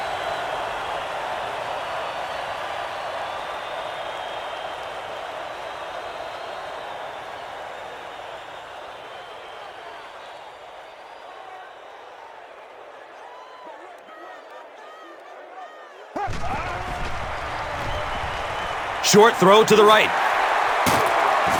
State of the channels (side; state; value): both; identical; correlation 1.00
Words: Short throw to the right.